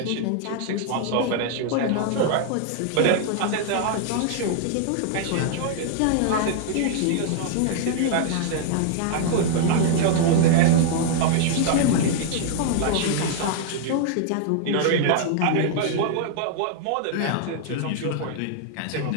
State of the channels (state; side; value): different; both; correlation -0.01